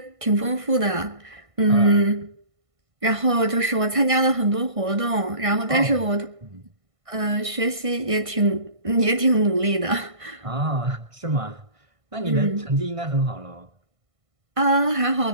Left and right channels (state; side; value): late; left; 1.5 ms